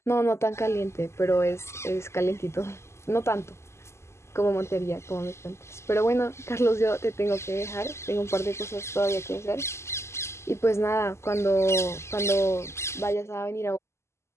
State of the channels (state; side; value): late; right; 0.13 ms